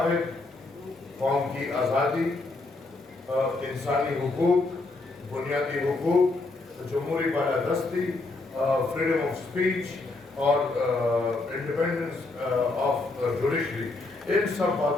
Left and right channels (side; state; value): right; quieter; 3.3 dB